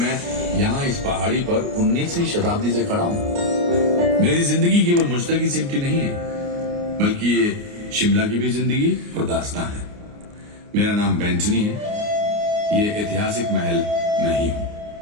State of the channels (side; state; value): left; late; 29 ms